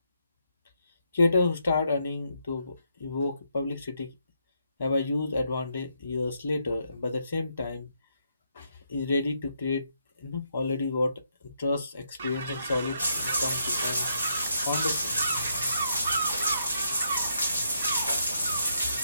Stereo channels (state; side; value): inverted; both; correlation -0.77